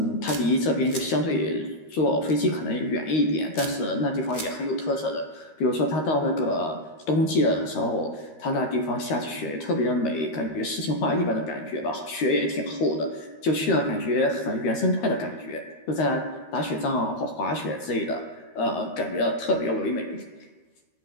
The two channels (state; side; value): late; right; 13 ms